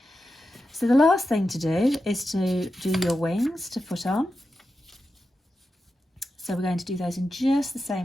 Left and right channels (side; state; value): both; normal; correlation 0.90